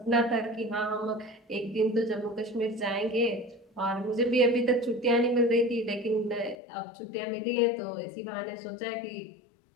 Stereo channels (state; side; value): drops out; right; at 6.6 s